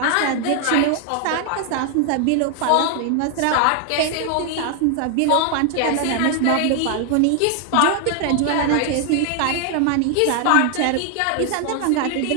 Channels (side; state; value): both; different; correlation 0.00